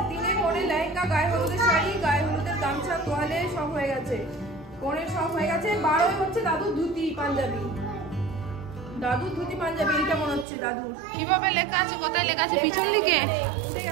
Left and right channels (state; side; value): drops out; left; at 10.5 s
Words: দিনে পরে লেহেঙ্গা, গায়ে হলুদের শাড়ি, গায়ে হলুদের গামছা, তোয়ালে সব হয়ে গেছে, কোণের সব হয়ে গেছে। 12 হচ্ছে দাদুর ধুতি পাঞ্জাবি, দাদুর ধুতি পাঞ্জাবি। এইটা মনে হচ্ছে দাদুর। কিভাবে লেখা আছে, কোথায় লেখা আছে? পিছন দিকে উঠে